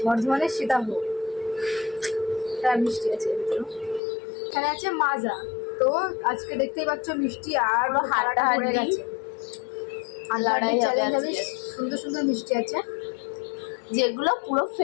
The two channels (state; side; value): drops out; right; at 4.0 s